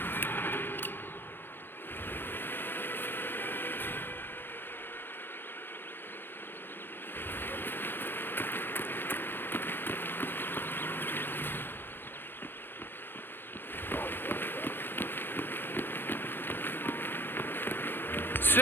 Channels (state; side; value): late; right; 0.10 ms